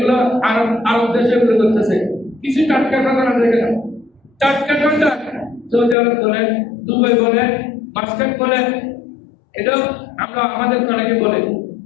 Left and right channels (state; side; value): drops out; right; at 6.0 s